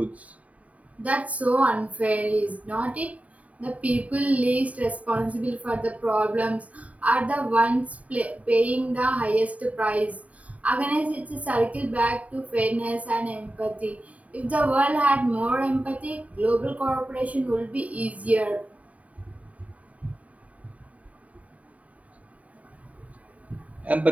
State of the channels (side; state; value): left; late; 0.069 ms